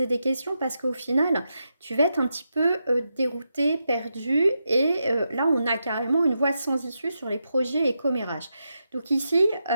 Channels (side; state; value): both; inverted; correlation -0.86